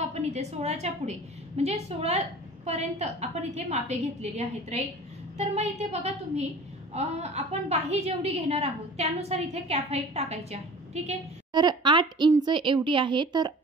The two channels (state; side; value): normal; both; correlation 0.42